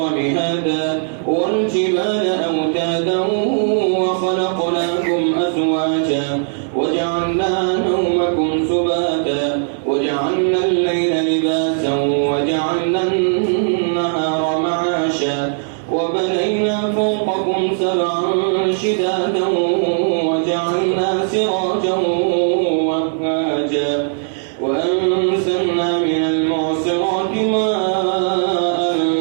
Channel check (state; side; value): silent; left; digital silence